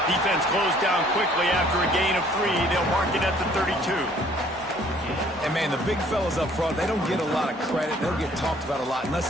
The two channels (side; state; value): both; normal; correlation 0.58